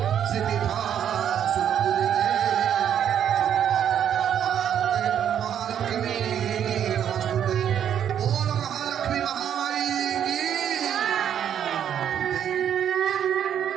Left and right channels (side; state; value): left; quieter; 9.4 dB